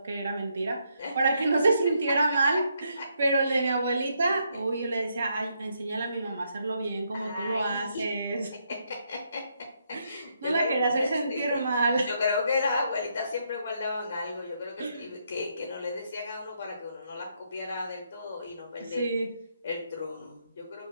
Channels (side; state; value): both; inverted; correlation -0.77